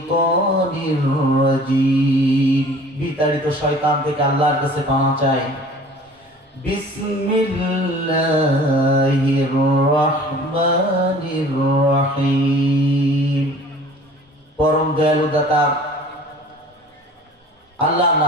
রাজীম। বিতাড়িত শয়তান থেকে আল্লাহর কাছে পানা চাই। বিসমিল্লাহির রহমানির রহিম। পরম দয়ালু দাতা আল্লাহর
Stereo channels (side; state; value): both; normal; correlation 0.47